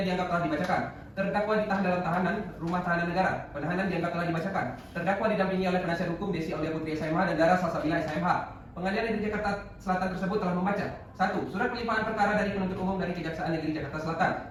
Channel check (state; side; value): identical; both; correlation 1.00